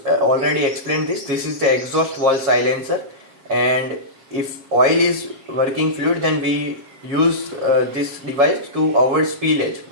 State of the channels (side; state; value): left; late; 7.5 ms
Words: already explained this. This is the exhaust valve silencer, and if oil is working fluid, then we use this device to avoid spillage.